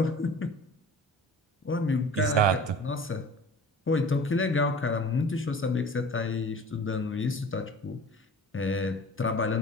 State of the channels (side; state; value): both; normal; correlation 0.42